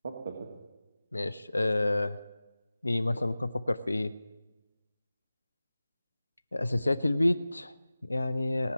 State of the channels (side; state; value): both; inverted; correlation -0.97